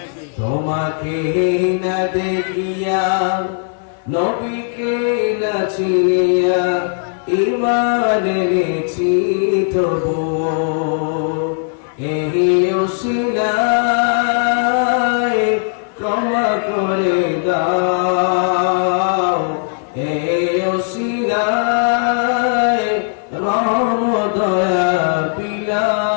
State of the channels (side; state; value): right; silent; 59 dB below the other